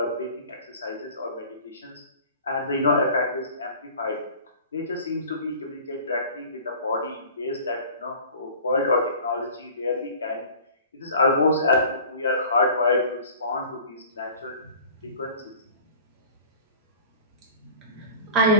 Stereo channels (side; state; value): both; inverted; correlation -0.44